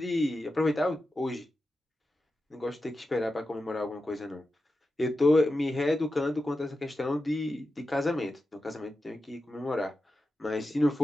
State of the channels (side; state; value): both; normal; correlation 0.91